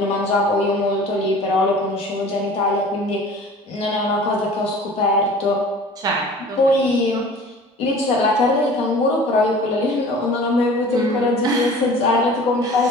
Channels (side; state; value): both; normal; correlation 0.44